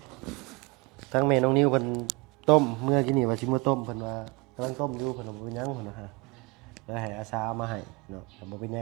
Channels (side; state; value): left; quieter; 26.2 dB